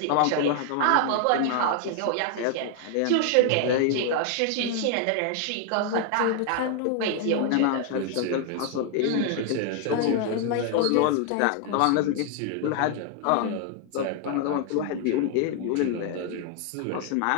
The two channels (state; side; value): different; both; correlation 0.00